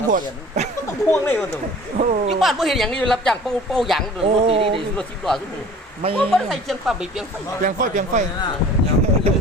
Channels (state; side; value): normal; both; correlation 0.46